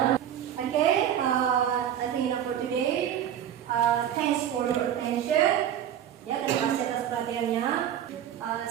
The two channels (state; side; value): quieter; left; 10.3 dB